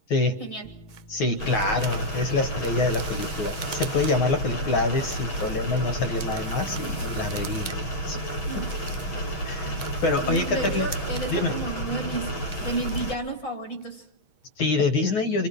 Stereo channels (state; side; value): late; right; 6.3 ms